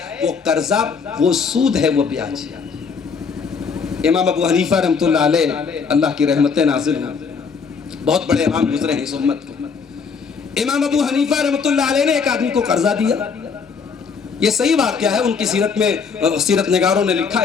وہ قرضہ، وہ سود ہے، وہ بیاج ہے۔ امام ابو حنیفہ رحمۃ اللہ علیہ، اللہ کی رحمتیں نازل ہوں، بہت بڑے امام گزرے ہیں اس امت کے۔ امام ابو حنیفہ رحمۃ اللہ علیہ نے ایک آدمی کو قرضہ دیا، یہ صحیح واقعہ ہے، ان کی سیرت میں سیرت نگاروں نے لکھا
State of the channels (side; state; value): right; quieter; 5.6 dB